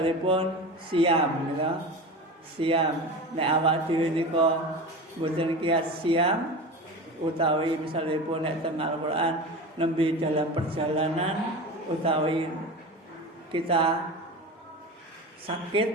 siam ya. Siam nek awak dhewe nika mboten kiat siam utawi misalipun nek teng Al-Qur'an nembe dalam perjalanan utawi kita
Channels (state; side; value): normal; both; correlation 0.29